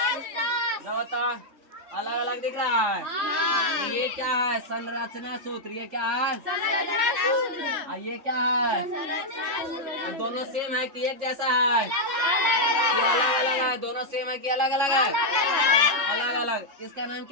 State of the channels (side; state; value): left; late; 3.6 ms